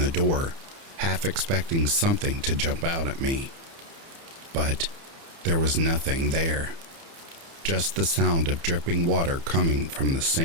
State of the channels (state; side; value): late; left; 30 ms